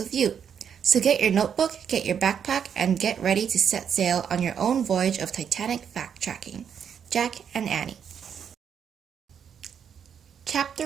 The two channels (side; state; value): left; quieter; 7.9 dB